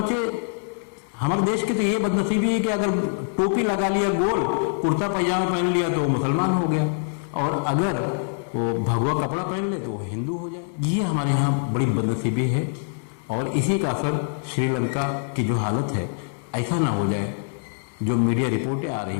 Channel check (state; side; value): silent; right; digital silence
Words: हमारे देश की तो ये बदनसीबी है कि अगर टोपी लगा लिया गोल, कुर्ता पैजामा पहन लिया तो वो मुसलमान हो गया और अगर वो भगवा कपड़ा पहन ले तो वो हिंदू हो जाए। ये हमारे यहाँ बड़ी बदनसीबी है और इसी का असर श्रीलंका की जो हालत है, ऐसा ना हो जाए जो मीडिया रिपोर्टें आ